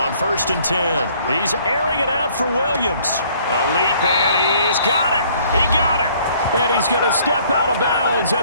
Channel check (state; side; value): inverted; both; correlation -0.60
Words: 1st and 10. He's airing it out for Williams. A leap, and he's got it. He got it. And he's going to step out of bounds